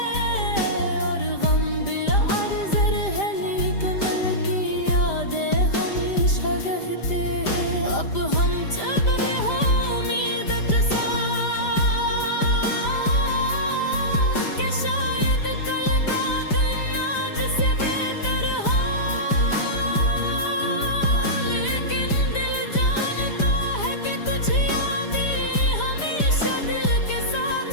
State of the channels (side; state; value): right; late; 5.0 ms